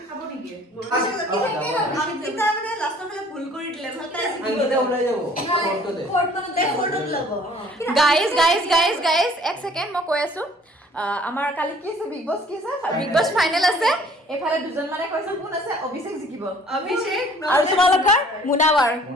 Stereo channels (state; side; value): normal; both; correlation 0.54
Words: খাব নেকি অংকিতা মানে লাষ্টৰ ফালে ভুল কৰি দিলে ভাল তাই আঙ্গিতা ওলাই যাব ফটোতে ফটোত ল'ব গাইজ এক ছেকেণ্ড মই কৈ আছো আমাৰ কালি কি আছে বিগ বছ কি আছে বিগ বছ ফাইনেল আছে এফালে দুজন মানে কৈছে কোন আছে অভিষেক জিকিব অভিষেক আৰু তোমালোকৰ মুনাৱাৰ